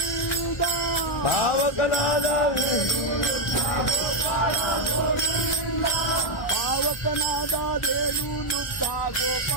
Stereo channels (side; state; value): right; late; 1.1 ms